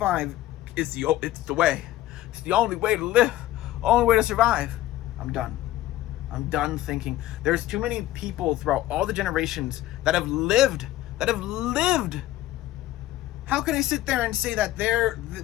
is it's the way. It's the only way to live, only way to survive. I'm done. I'm done thinking. There's too many people throughout all the generations that have lived. How can I sit there and say that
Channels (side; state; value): right; quieter; 14.7 dB